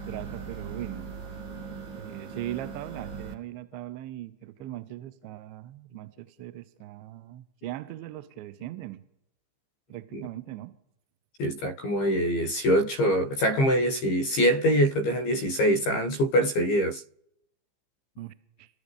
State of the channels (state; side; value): late; right; 15 ms